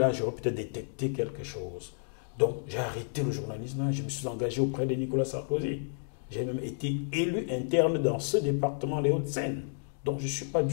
j'aurais peut-être détecté quelque chose. Donc, j'ai arrêté le journalisme, je me suis engagé auprès de Nicolas Sarkozy. J'ai même été élu interne dans ce département, les Hauts-de-Seine. Donc, je ne suis pas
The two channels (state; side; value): silent; right; digital silence